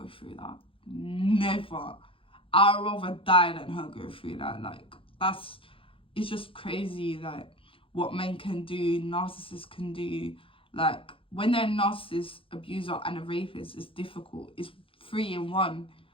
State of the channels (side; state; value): right; late; 0.26 ms